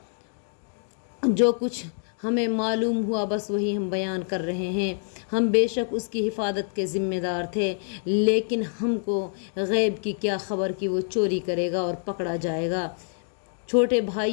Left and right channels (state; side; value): silent; right; digital silence